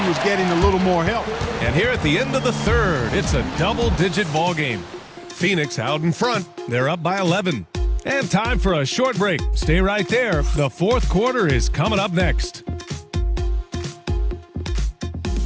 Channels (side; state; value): both; identical; correlation 1.00